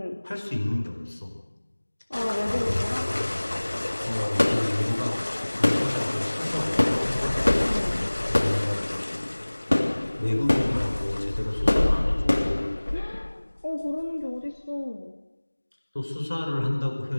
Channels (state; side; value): inverted; both; correlation -1.00